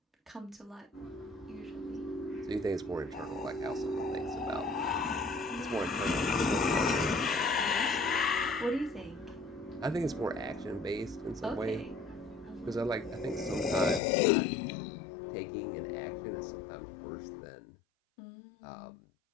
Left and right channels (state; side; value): drops out; right; at 14.0 s